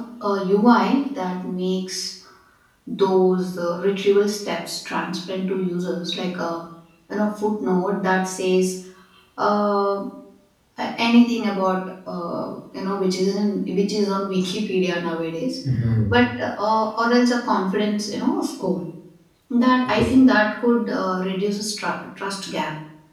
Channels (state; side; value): identical; both; correlation 1.00